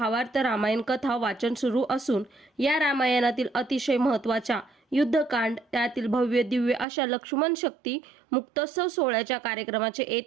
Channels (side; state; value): left; drops out; at 6.9 s